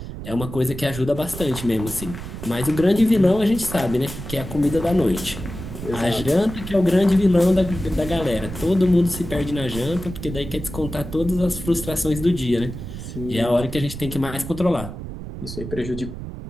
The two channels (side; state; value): right; noise; rumble, 10 dB below the sound